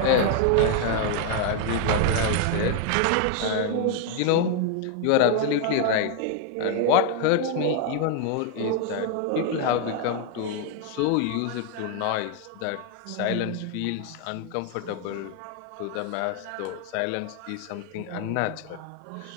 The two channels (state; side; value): different; both; correlation 0.00